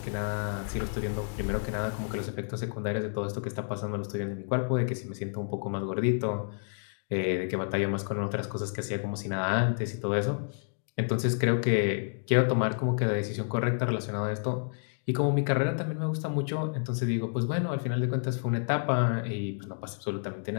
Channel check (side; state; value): right; silent; digital silence